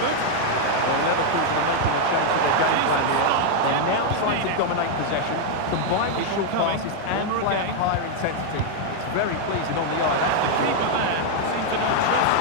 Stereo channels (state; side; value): different; both; correlation 0.00